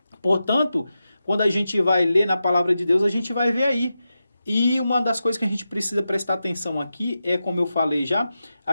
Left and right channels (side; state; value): both; inverted; correlation -0.90